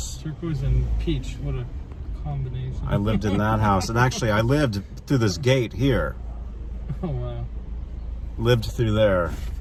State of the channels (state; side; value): identical; both; correlation 1.00